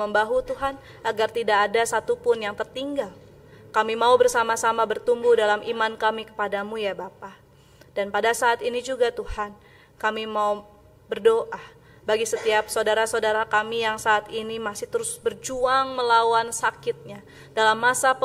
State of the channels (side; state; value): both; identical; correlation 1.00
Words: Tuhan, agar tidak ada satupun yang tertinggal. Kami mau bersama-sama bertumbuh dalam iman kami kepadamu ya Bapa. Dan pada saat ini juga Tuhan, kami mau berdoa bagi setiap saudara-saudara kami yang saat ini masih terus berjuang melawan sakitnya. Dalam masa